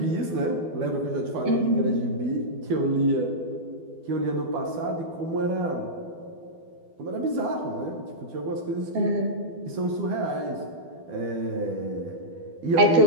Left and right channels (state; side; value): late; left; 12 ms